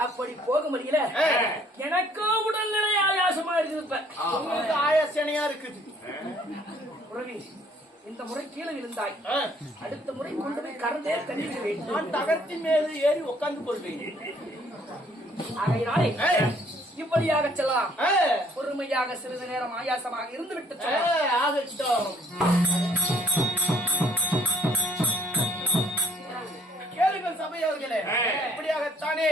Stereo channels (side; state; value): both; normal; correlation 0.61